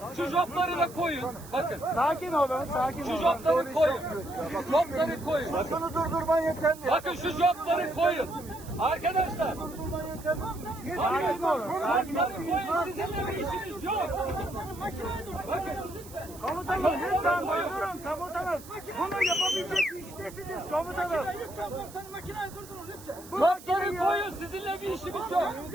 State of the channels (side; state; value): right; noise; hiss, 18 dB below the sound